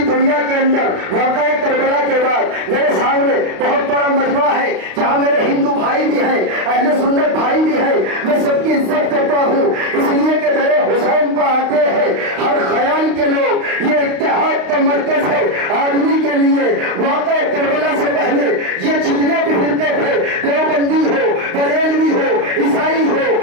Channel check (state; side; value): late; left; 32 ms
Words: दुनिया के अंदर वाक़या करबला के बाद मेरे सामने बहुत बड़ा मजमा है जहां मेरे हिंदू भाई भी हैं, अहले सुन्नत भाई भी हैं। मैं सबकी इज्जत करता हूं, इसलिए कि मेरे हुसैन पर आते हैं हर ख्याल के लोग। ये इत्तेहाद का मरकज है आदमी के लिए। वाक़या करबला से पहले ये जितने भी फिरके थे, देवबंदी हो, बरेलवी हो, ईसाई हो,